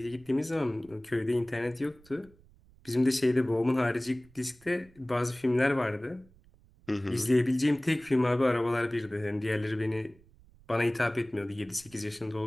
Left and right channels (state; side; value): noise; right; rumble, 27 dB below the sound